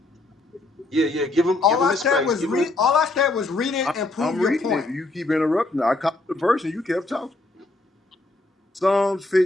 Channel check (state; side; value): quieter; right; 3.0 dB